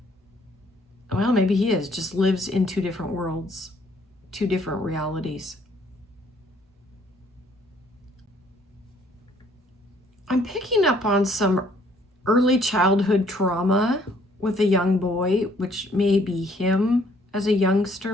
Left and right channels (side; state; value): both; normal; correlation 0.63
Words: well, maybe he is, just lives in two different worlds, two different realities. I'm picking up on some early childhood trauma with a young boy, which may be him as a